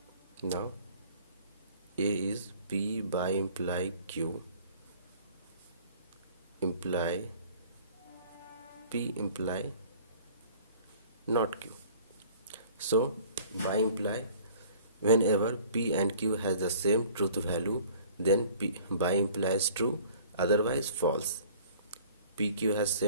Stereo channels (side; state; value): both; inverted; correlation -0.50